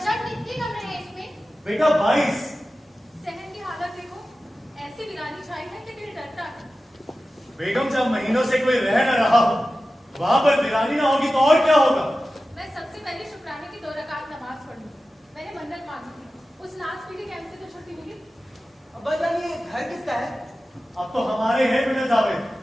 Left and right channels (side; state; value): both; normal; correlation 0.94